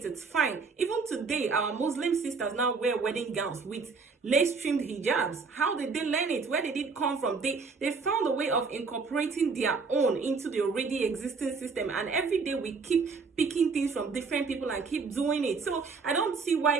it's fine. Even today, our Muslim sisters now wear wedding gowns with lace-trimmed hijabs. How did they learn it? Where did it come from? They found a way of incorporating their own into the already existing system, and every day we keep picking things from different people and keep doing it. So I don't see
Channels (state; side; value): quieter; left; 4.7 dB